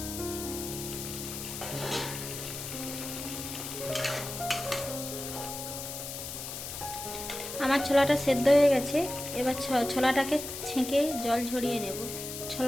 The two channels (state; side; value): noise; left; hiss, 7 dB below the sound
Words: আমার ছোলাটা সেদ্ধ হয়ে গেছে। এবার ছোলাটাকে ছেঁকে জল ঝরিয়ে নেব।